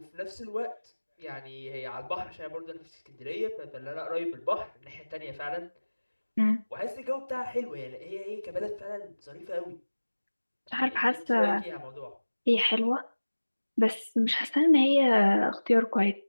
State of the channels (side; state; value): both; inverted; correlation -1.00